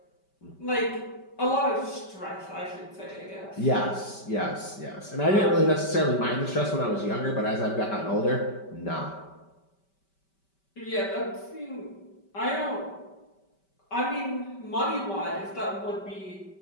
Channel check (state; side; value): late; right; 5.2 ms